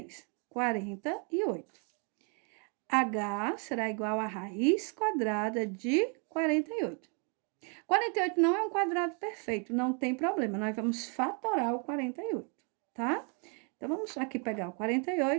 48. H será igual a raiz quadrada de 48. 48 não é um quadrado perfeito, não tem problema. Nós vamos fatorar o 48, tá? Então, vamos aqui pegar o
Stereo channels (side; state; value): left; quieter; 37.3 dB